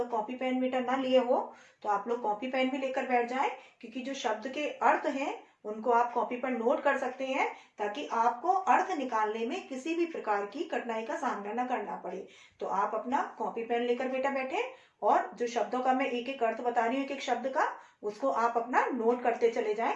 कॉपी पेन मीटर ना लिए हो तो आप लोग कॉपी पेन भी लेकर बैठ जाएं, क्योंकि जो शब्द के अर्थ हैं उनको आप कॉपी पर नोट कर सकते हैं, ताकि आपको अर्थ निकालने में किसी भी प्रकार की कठिनाई का सामना न करना पड़े। तो आप अपना कॉपी पेन लेकर बेटा बैठे, और जो शब्दों का मैं एक एक अर्थ बता रही हूँ, एक एक शब्द का, उसको आप अपना नोट करते चले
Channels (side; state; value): both; identical; correlation 1.00